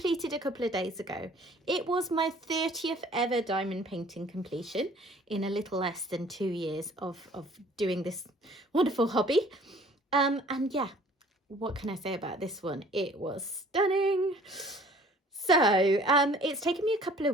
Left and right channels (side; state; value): both; normal; correlation 0.53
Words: a couple of days ago. It was my 30th ever diamond painting completion in a little less than 2 years of doing this wonderful hobby. And yeah, what can I say about this one? It was stunning. So it's taken me a couple